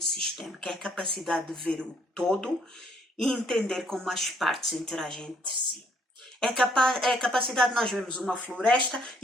sistémico? É a capacidade de ver o todo e entender como as partes interagem entre si. É a capacidade de nós vermos uma floresta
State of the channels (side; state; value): both; normal; correlation 0.66